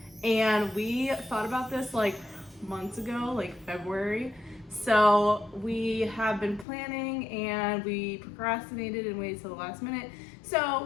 and we thought about this like months ago, like February. So we have been planning and we procrastinated and waited till the last minute.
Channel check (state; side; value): drops out; right; at 6.7 s